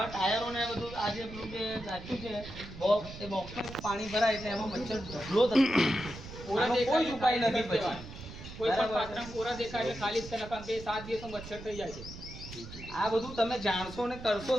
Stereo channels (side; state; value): right; noise; rumble, 13 dB below the sound